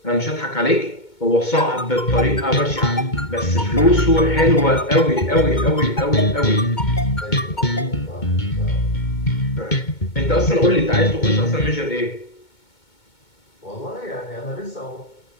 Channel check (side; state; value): right; late; 2.2 ms